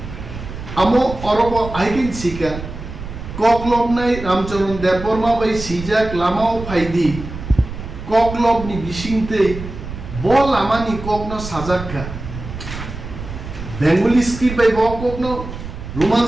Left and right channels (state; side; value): noise; right; rumble, 10 dB below the sound